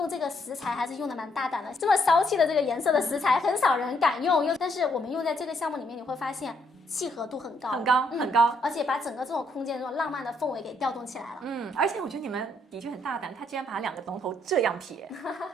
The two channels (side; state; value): both; normal; correlation 0.72